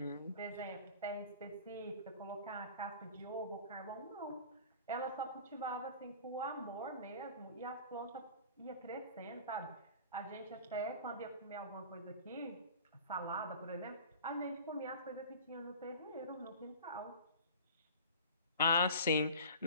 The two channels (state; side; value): inverted; both; correlation -0.40